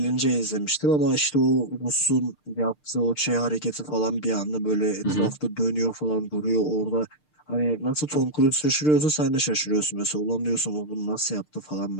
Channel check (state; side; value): late; right; 6.6 ms